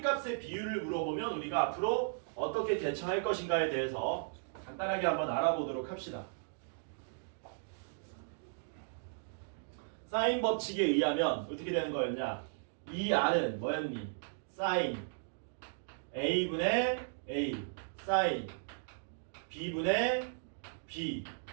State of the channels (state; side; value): silent; left; digital silence